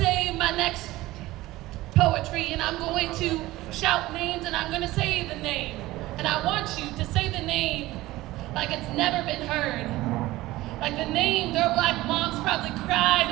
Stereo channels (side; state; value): left; quieter; 17.8 dB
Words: my next poetry, and I'm going to shout names, and I'm going to say the name. And I want you to say the name like it's never been heard. Like the name their Black moms probably